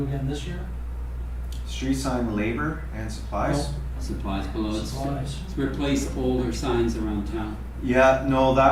again this year? Street sign labor and supplies? Supplies below, it's Supplies. replace older signs around town. Yeah, no,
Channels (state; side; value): identical; both; correlation 1.00